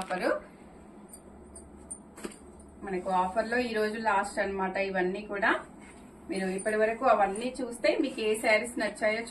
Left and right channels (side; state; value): both; identical; correlation 1.00